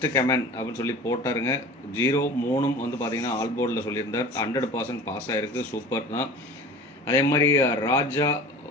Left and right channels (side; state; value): both; normal; correlation 0.39